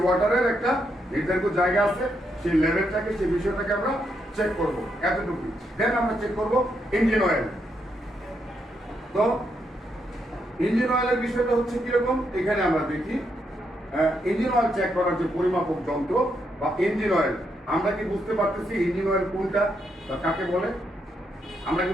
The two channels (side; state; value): both; normal; correlation 0.79